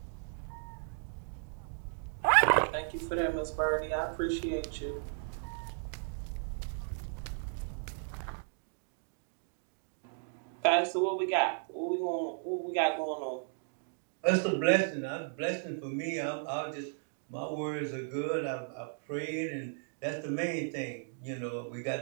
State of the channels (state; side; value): silent; left; digital silence